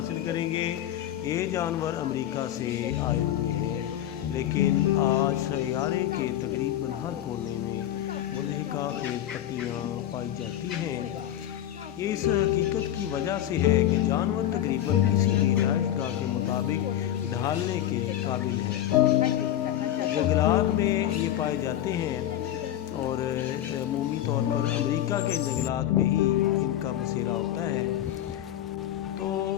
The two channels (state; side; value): quieter; right; 12.0 dB